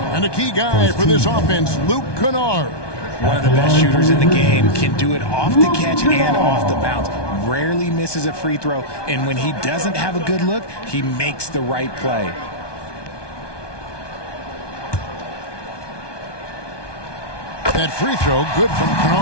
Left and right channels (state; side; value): late; right; 1.2 ms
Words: And a key guy for this offense, Luke Kennard. One of the best shooters in the game, can do it off the catch and off the bounce. Rarely misses a free throw, and when he doesn't have a good look, he makes the right play. That free throw, good from